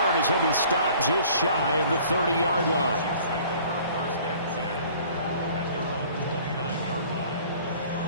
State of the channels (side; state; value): both; inverted; correlation -0.52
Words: as he'll be stopped just shy of the 30-yard line.